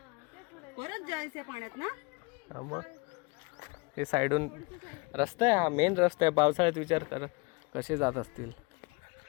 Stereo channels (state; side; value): quieter; right; 27.9 dB